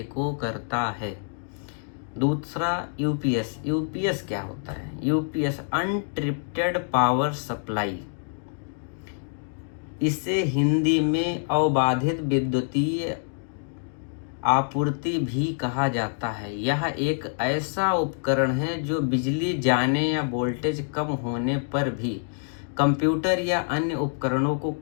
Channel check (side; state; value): right; silent; digital silence